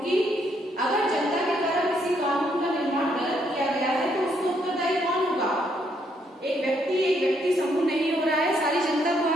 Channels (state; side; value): normal; both; correlation 0.73